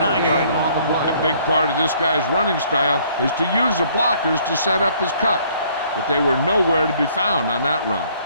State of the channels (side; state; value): both; inverted; correlation -0.61